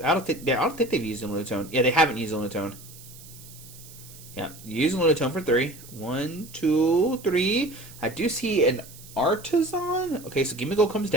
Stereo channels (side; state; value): right; noise; hiss, 19 dB below the sound